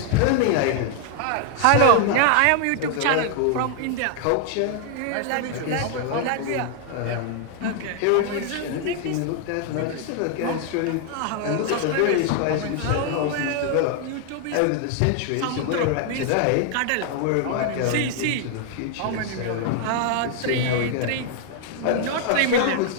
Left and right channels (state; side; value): different; both; correlation 0.00